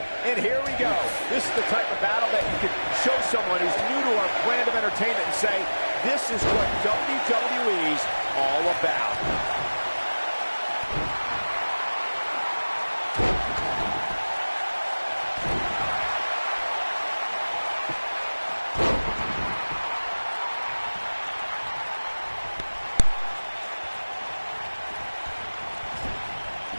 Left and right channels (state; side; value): inverted; both; correlation -1.00